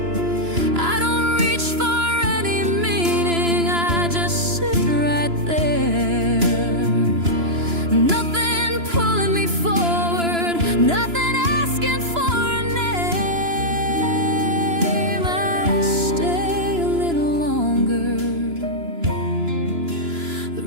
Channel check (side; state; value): left; late; 2.9 ms